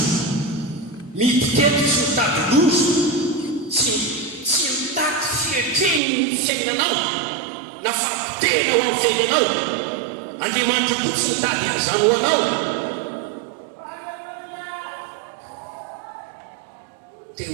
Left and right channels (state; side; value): drops out; left; at 6.0 s